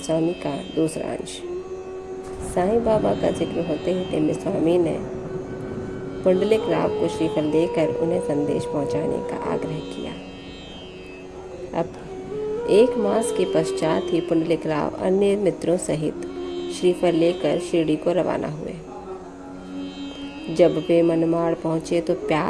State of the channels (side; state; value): both; identical; correlation 1.00